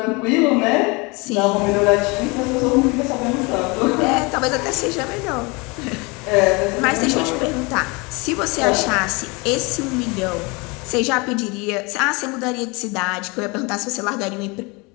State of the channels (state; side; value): quieter; right; 27.4 dB